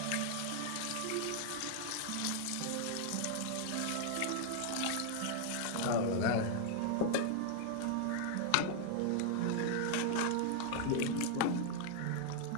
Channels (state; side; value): different; both; correlation 0.00